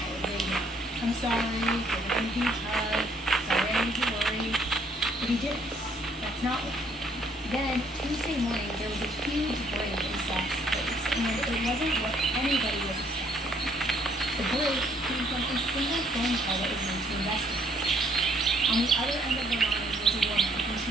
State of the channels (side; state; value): both; normal; correlation 0.65